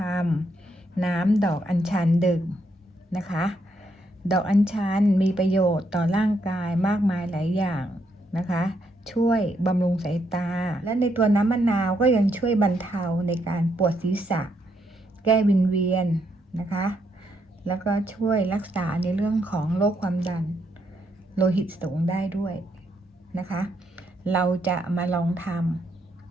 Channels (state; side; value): normal; both; correlation 0.76